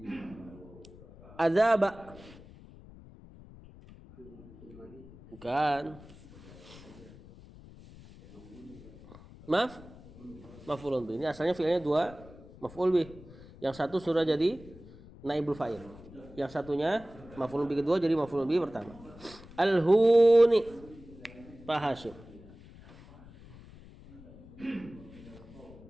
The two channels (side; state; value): left; noise; rumble, 20 dB below the sound